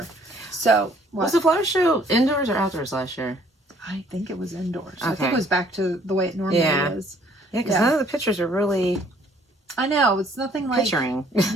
So, was the flower show indoors or outdoors last year? I think it was indoors. Okay. I think it was back to the way it normally is. Yeah, because none of the pictures are really... I know, it's nothing like... Picturing.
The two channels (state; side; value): normal; both; correlation 0.61